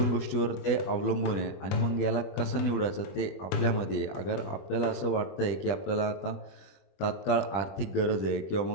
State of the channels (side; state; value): right; late; 20 ms